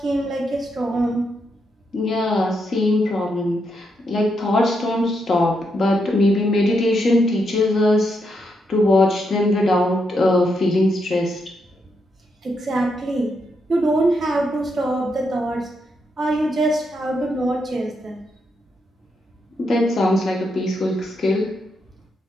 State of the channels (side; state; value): both; normal; correlation 0.81